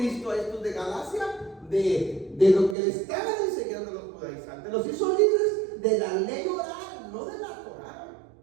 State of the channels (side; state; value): left; drops out; at 2.8 s